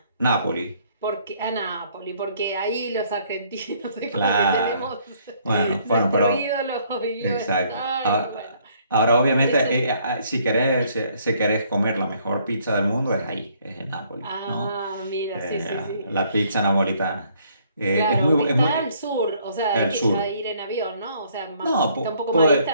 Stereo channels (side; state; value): both; inverted; correlation -0.65